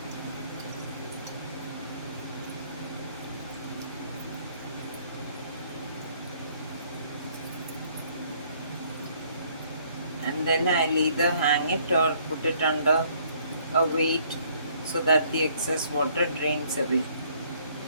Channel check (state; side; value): inverted; both; correlation -0.63